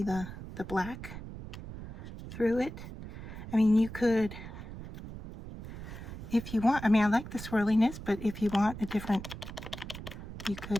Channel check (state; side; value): noise; right; rumble, 11 dB below the sound